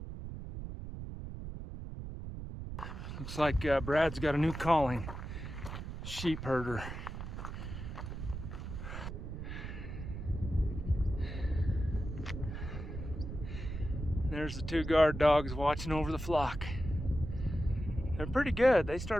Looks like Brad's got a new calling, sheep herder. There's the 2 guard dogs watching over the flock. They're pretty good. They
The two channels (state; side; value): noise; right; rumble, 7 dB below the sound